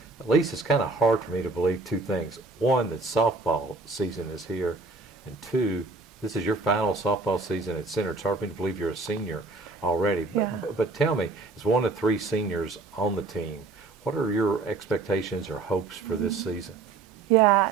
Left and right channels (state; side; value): quieter; left; 3.8 dB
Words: Elysse, it's kind of hard for me to believe two things. One, that softball season is here, and two, this is your final softball season at center. It's hard for me to believe you're a senior already. But tell me, as one of three seniors on the team, what are your expectations or hopes for this season?